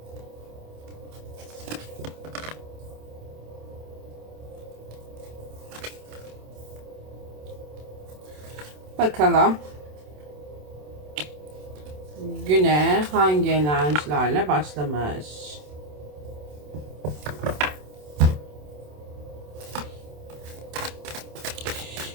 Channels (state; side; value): late; left; 27 ms